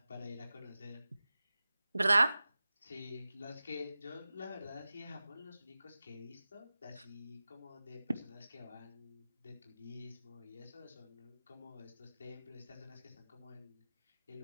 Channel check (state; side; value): inverted; both; correlation -0.96